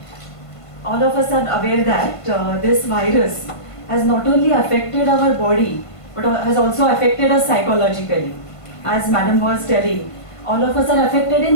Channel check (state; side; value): late; right; 1.5 ms